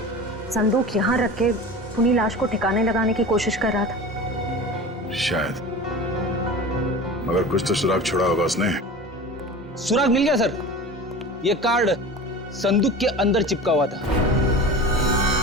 संदूक यहाँ रख के खूनी लाश को ठिकाने लगाने की कोशिश कर रहा था। शायद, मगर कुछ तो सुराग छोड़ा होगा उसने। सुराग मिल गया सर, ये कार्ड संदूक के अंदर चिपका हुआ था।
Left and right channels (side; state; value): both; normal; correlation 0.34